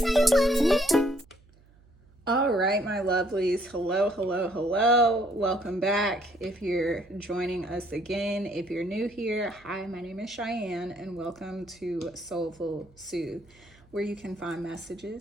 right, my lovelies. Hello, hello, hello. Welcome back. If you're joining us again, if you're new here, hi, my name is Cheyenne, and welcome to Soulful Soothe, where you can find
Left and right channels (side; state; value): right; noise; hum, 28 dB below the sound